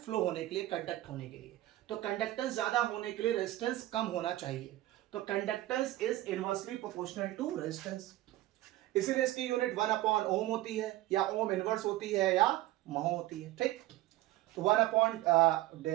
होने के लिए, कंडक्ट होने के लिए। तो कंडक्टेंस ज्यादा होने के लिए रेजिस्टेंस कम होना चाहिए। तो conductance is inversely proportional to resistance. इसीलिए इसकी यूनिट 1 अपॉन ओम होती है, या ओम इनवर्स होती है, या महो होती है। ठीक, तो 1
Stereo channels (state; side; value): quieter; left; 16.4 dB